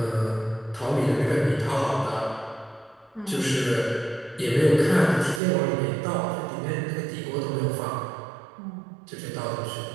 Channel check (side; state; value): left; drops out; at 5.4 s